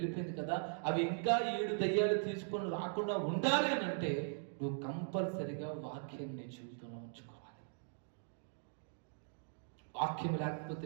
కదా, అవి ఇంకా 7 దయ్యాలు తీసుకొని రాకుండా ఉండాలి అని అంటే నువ్వు కంపల్సరిగా వాక్యం నీ జీవితంలో ఉంచుకోవాలి. వాక్యం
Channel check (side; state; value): left; silent; digital silence